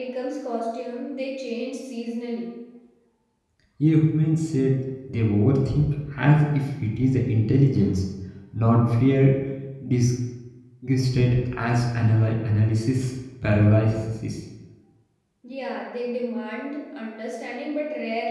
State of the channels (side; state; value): both; identical; correlation 1.00